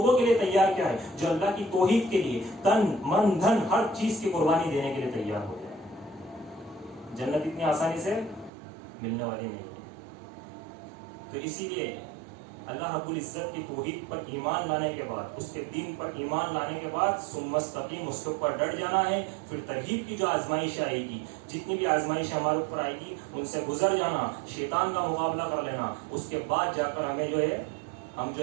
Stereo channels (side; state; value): left; drops out; at 8.5 s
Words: کے لیے تیار کیا ہے جو اللہ کی توحید کے لیے تن من دھن ہر چیز کی قربانی دینے کے لیے تیار ہو جائے. جنت اتنی آسانی سے ملنے والی نہیں ہے. تو اسی لیے اللہ رب العزت کی توحید پر ایمان لانے کے بعد، اس کے دین پر ایمان لانے کے بعد ثم استقیم، اس کے اوپر ڈٹ جانا ہے. پھر ترغیب کی جو آزمائش آئے گی، جتنی بھی آزمائش ہمارے اوپر آئے گی ان سے گزر جانا، شیطان کا مقابلہ کر لینا. اس کے بعد جا کر ہم